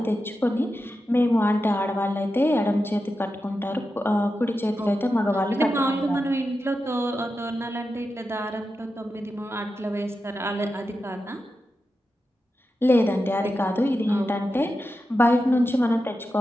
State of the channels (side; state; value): both; normal; correlation 0.90